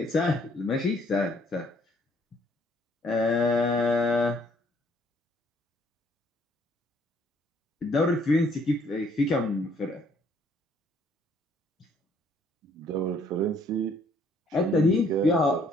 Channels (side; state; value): both; normal; correlation 0.64